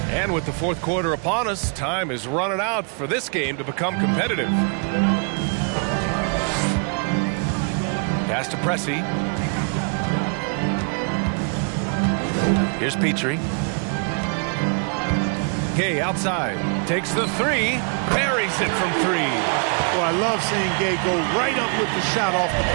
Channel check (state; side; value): quieter; left; 39.9 dB